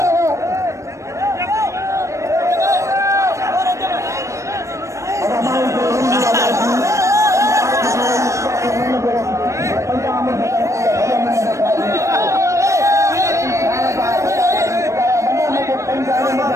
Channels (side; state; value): left; late; 0.15 ms